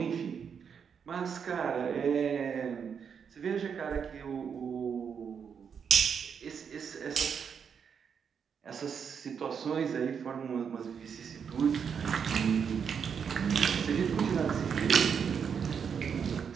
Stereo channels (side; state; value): left; quieter; 6.9 dB